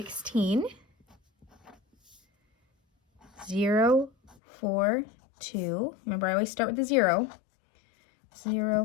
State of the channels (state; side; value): drops out; right; at 4.4 s